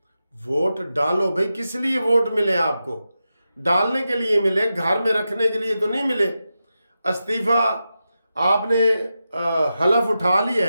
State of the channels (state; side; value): inverted; both; correlation -0.90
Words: ووٹ ڈالو بھائی، کس لیے ووٹ ملے آپ کو؟ ڈالنے کے لیے ملے، گھر میں رکھنے کے لیے تو نہیں ملے۔ استعفیٰ آپ نے حلف اٹھا لیا